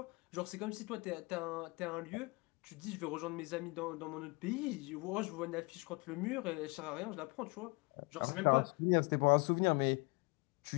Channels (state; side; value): quieter; right; 28.1 dB